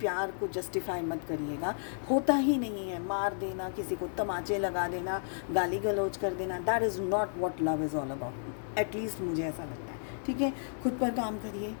को जस्टिफाई मत करिएगा। होता ही नहीं है। मार देना, किसी को तमाचे लगा देना, गाली गलौज कर देना, that is not what love is all about. At least मुझे ऐसा लगता है। ठीक है, खुद पर काम करिए।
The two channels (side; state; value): right; silent; digital silence